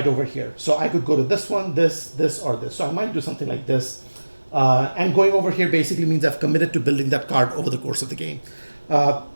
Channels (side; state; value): both; inverted; correlation -1.00